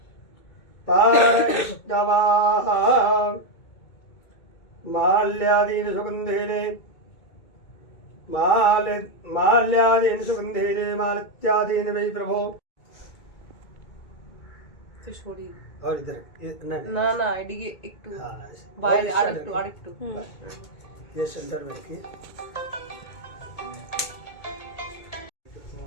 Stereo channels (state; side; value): late; right; 2.2 ms